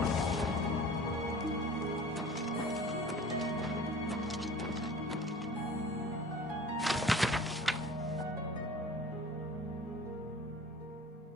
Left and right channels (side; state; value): both; normal; correlation 0.43